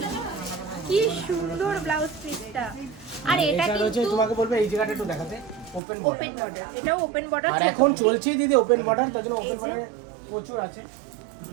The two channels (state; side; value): drops out; left; at 5.8 s